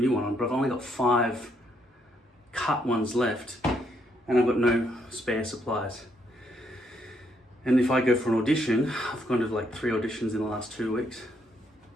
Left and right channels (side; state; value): both; normal; correlation 0.74